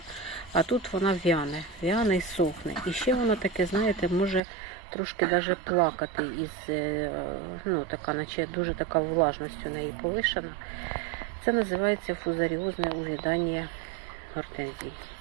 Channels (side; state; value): left; drops out; at 4.4 s